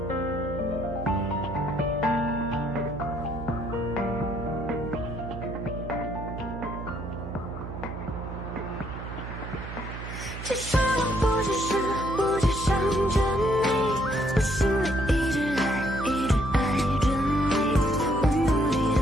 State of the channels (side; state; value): right; noise; hum, 9 dB below the sound